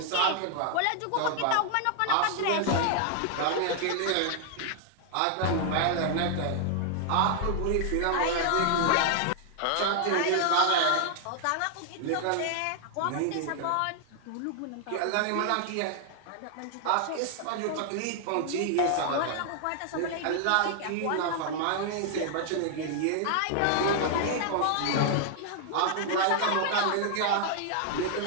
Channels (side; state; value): both; different; correlation 0.00